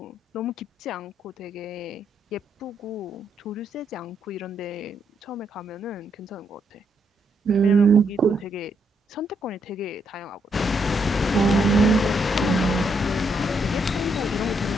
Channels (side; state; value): both; normal; correlation 0.76